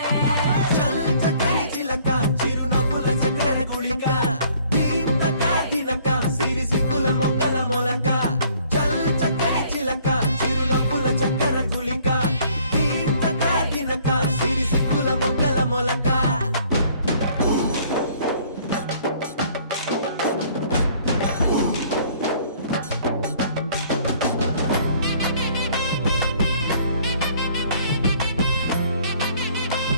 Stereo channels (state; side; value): inverted; both; correlation -0.59